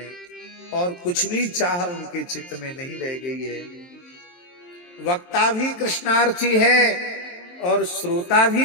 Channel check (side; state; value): right; late; 23 ms